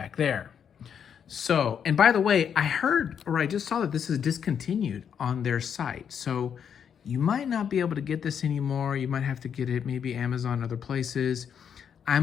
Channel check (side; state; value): right; quieter; 7.8 dB